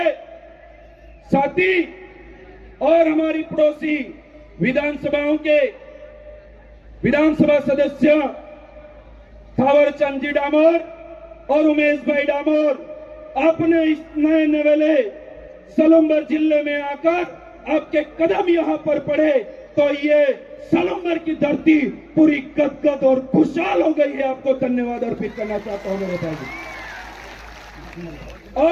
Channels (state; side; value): identical; both; correlation 1.00